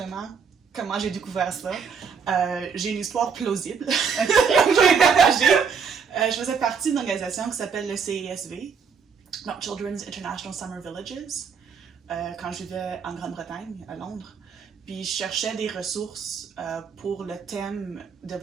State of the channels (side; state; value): left; quieter; 6.1 dB